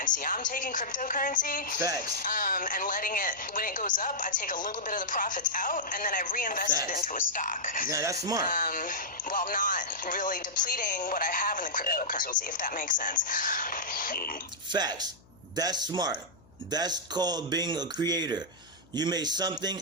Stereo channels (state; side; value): noise; left; hum, 27 dB below the sound